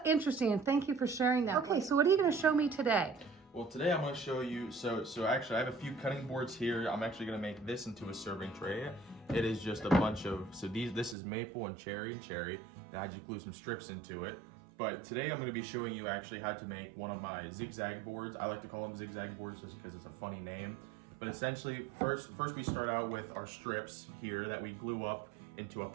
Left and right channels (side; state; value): left; drops out; at 11.2 s